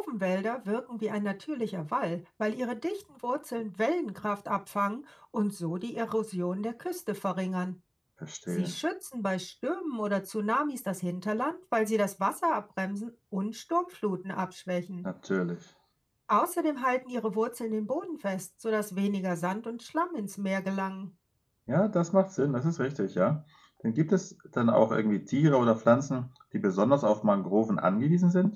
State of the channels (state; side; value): identical; both; correlation 1.00